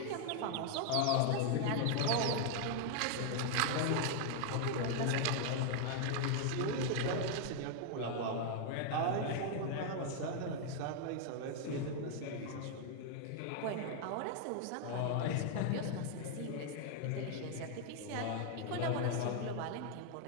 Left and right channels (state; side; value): different; both; correlation 0.00